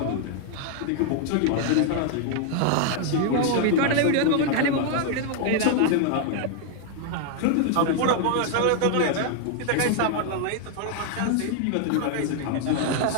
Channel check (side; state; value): both; different; correlation 0.00